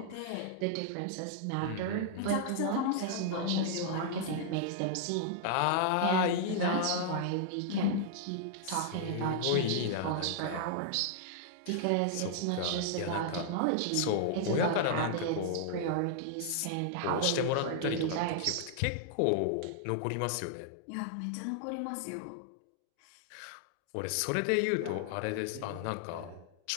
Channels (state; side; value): different; both; correlation -0.01